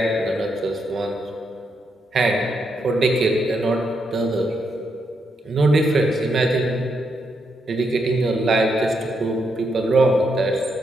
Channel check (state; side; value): normal; both; correlation 0.80